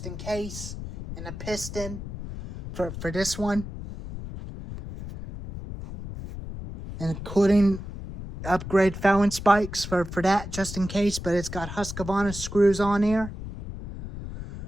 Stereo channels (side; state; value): left; noise; rumble, 9 dB below the sound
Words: in case, and a piston for this one. And including upgrade Fallon spikes for that just in case, but it's got Husqvarna screws on here.